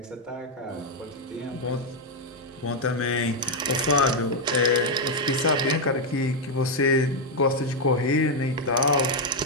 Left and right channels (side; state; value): both; normal; correlation 0.01